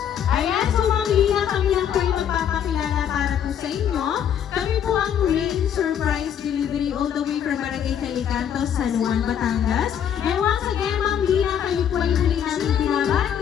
Ayan, so Ma'am Lina, kami lang po ay magpapakilala para po sa inyo. Kami po ang Rain Surprise Delivery all the way from Barangay Calicanto, San Juan, Batangas. And once again, Ma'am Lina, kayo po ay muli namin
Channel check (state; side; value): quieter; right; 9.0 dB